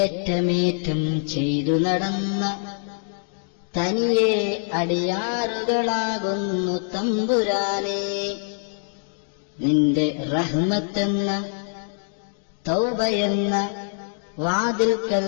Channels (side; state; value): right; silent; 63 dB below the other